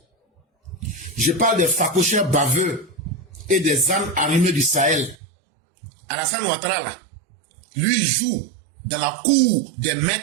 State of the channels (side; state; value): left; drops out; at 5.2 s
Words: Je parle des facocheurs baveux et des âmes armées du Sahel. Alassane Ouattara, là, lui joue dans la cour des